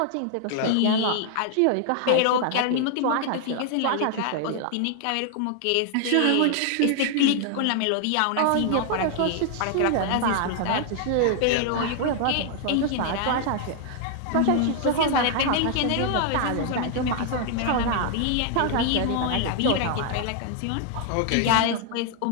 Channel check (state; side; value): different; both; correlation 0.00